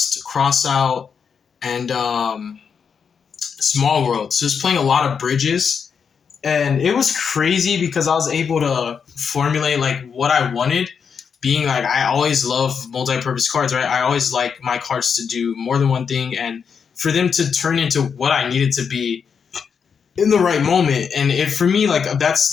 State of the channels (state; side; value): quieter; right; 6.5 dB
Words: cross out, and small world. So it's playing a lot of bridges, and it was crazy because I was able to formulate like what I wanted. Being like I always love multi-purpose cards, right? I always like my cards to do more than one thing, and for them to turn into what I needed to be in the right moment. And it for me, like